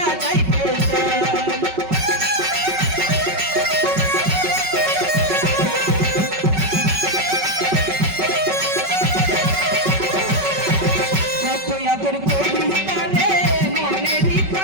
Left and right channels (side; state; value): left; late; 5.3 ms